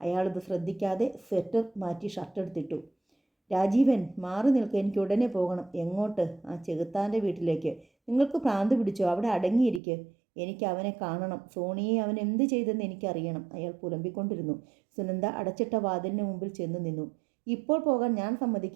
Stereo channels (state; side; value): drops out; left; at 9.8 s